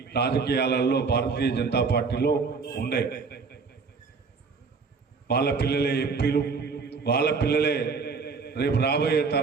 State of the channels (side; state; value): left; quieter; 4.9 dB